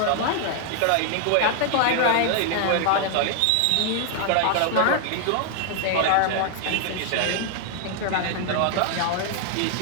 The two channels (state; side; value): different; both; correlation 0.00